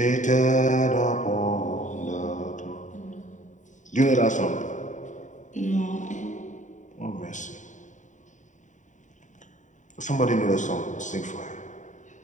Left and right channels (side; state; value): right; late; 0.36 ms